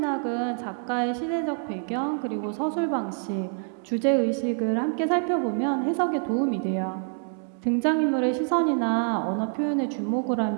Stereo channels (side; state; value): left; silent; 55 dB below the other